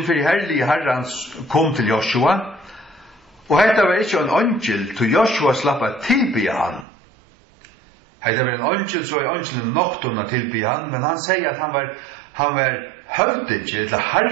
for herlige herrans kom til Joshua, og hetta var ikkje en angel til Joshua slappa tilbya han. Hetta var en angel, så er angelen noktona tilbya han, men han sier at han var høvdingen, eller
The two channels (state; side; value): drops out; left; at 6.9 s